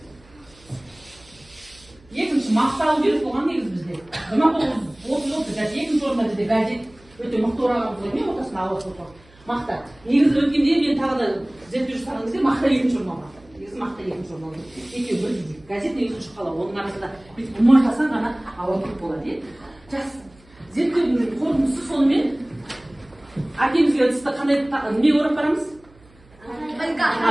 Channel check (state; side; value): noise; right; hum, 27 dB below the sound